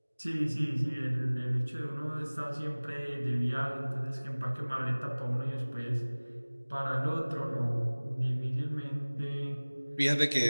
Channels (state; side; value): inverted; both; correlation -1.00